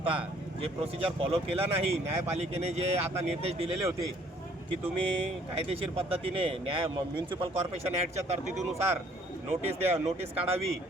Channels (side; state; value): both; normal; correlation 0.60